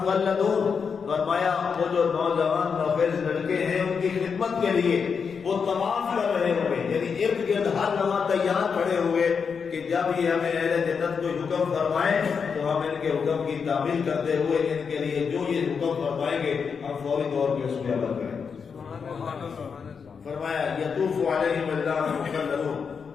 فرمایا وہ جو نوجوان نوخیز لڑکے ہیں ان کی خدمت کے لیے وہ طواف کر رہے ہوئے، یعنی ارد گرد ہر لمحہ تیار کھڑے ہوئے کہ جب یہ ہمیں اہل جنت کو حکم فرمائیں تو ہم ان کے حکم کی تعمیل کرتے ہوئے ان کے لیے جو یہ حکم فرمائیں گے ہم فوری طور پہ اس پہ عمل کریں۔ فرمایا یطوف علیہم ولدان مخلدون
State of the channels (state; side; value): quieter; right; 6.0 dB